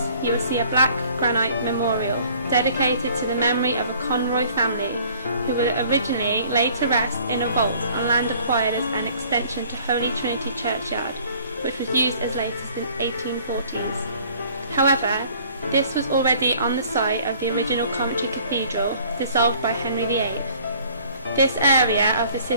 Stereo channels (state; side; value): inverted; both; correlation -0.55